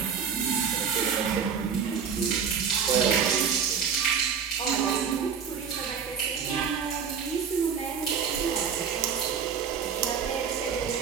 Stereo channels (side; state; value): left; quieter; 6.9 dB